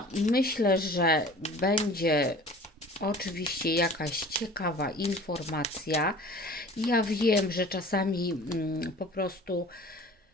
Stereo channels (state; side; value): normal; both; correlation 0.44